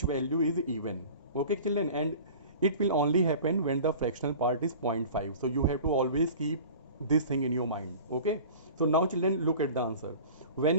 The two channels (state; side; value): inverted; both; correlation -0.41